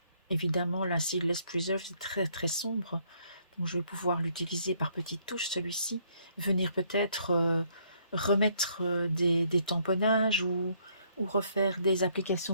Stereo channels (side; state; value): both; inverted; correlation -0.68